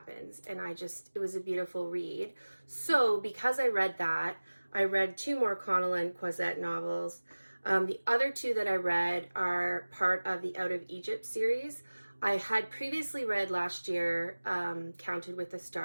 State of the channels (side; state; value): both; inverted; correlation -1.00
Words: And it was a beautiful read. So because I read that, I read 2 more Connellan Cosette novels. The other 2 that I read are part of the Out of Egypt series. I had previously read last year Counted with the